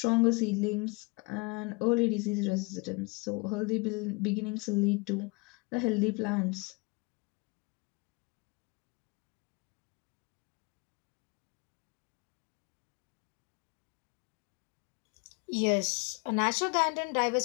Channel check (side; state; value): right; quieter; 28.8 dB